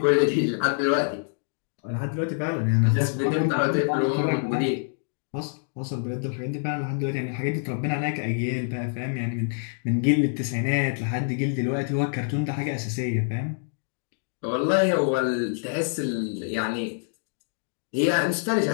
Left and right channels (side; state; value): right; silent; digital silence